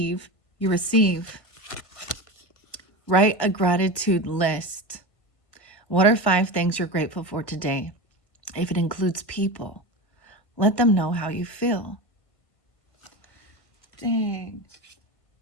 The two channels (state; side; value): late; right; 1.5 ms